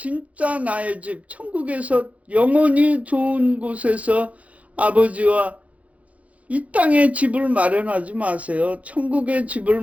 나의 집, 천국에서 영원히 좋은 곳에서 아버지와 이 땅에 집을 마련하지 마세요. 천국의 집을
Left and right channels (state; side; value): late; left; 0.066 ms